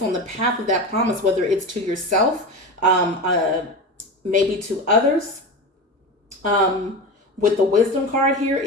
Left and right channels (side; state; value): both; normal; correlation 0.25